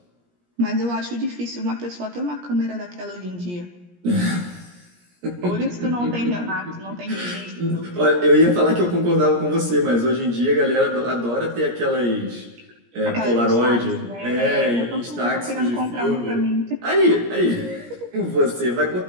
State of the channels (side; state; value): left; late; 17 ms